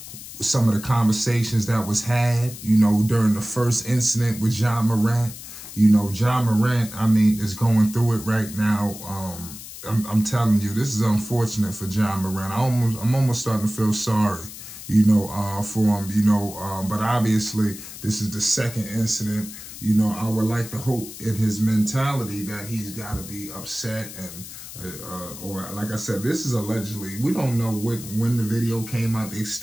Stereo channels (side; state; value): left; noise; hiss, 13 dB below the sound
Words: some of the conversations that was had, you know, during the first incident with Ja Morant. You know, Ja Morant, I mean, is going through it right now. I'm telling you, this is unfortunate for Ja Morant. I'm almost starting to feel sorry, you know, for him, you know, but obviously this is the second incident. You know, I would like to hope in his mentality that he's got to be upset and, or like I said, this is allegedly, we don't know when the video came out. They're